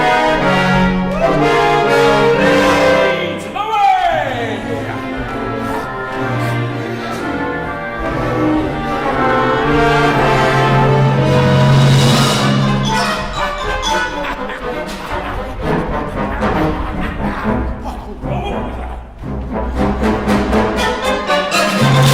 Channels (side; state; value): both; identical; correlation 1.00